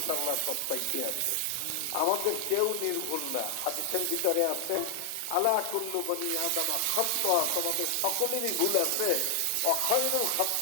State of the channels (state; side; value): different; both; correlation 0.00